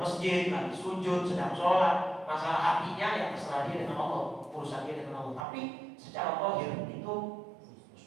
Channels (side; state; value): left; drops out; at 5.5 s